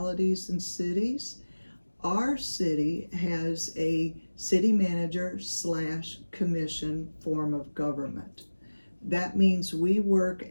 and cities. Our city has a city manager slash commission form of government. That means we work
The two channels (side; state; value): both; inverted; correlation -1.00